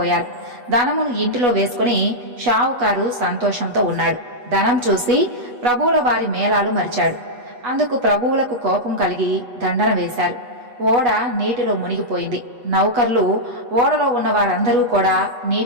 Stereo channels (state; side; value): late; left; 8.2 ms